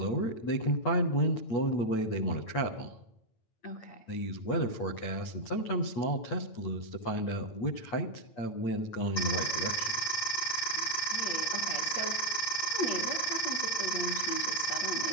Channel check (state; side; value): late; right; 9.0 ms